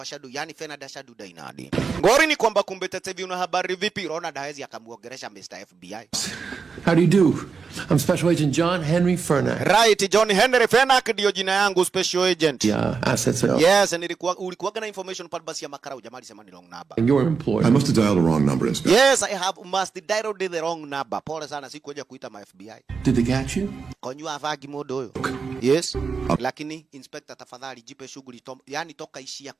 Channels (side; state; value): left; quieter; 5.3 dB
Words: Shadu, yani Fernando Shadu Dainadi. Ngori ni kwamba kumbe tete hivi una habari vipi? Ronald hawezi akamuongelesha Mr. FBI. How do you do? I'm Special Agent John Henry Fernak. Right, John Henry Fernak ndio jina yangu, Special Agent. Yeah, assets. Yes, and ulikuwa na information pale basi ya makarau jamaa alisema ni wrong number. And you're employed. I must have dialed the wrong number, Inspector. Yes, I have must dialed the wrong number. Pole sana sikuja kuita ma FBI. Did they catch you? Konyu avagi modo huyo. Yes. Lakini Inspector tafadhali jipe shughuli yani toka ishia